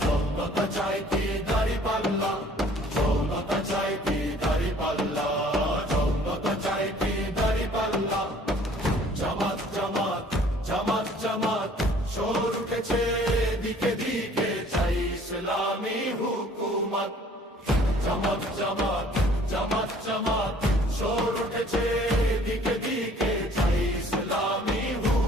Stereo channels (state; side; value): normal; both; correlation 0.55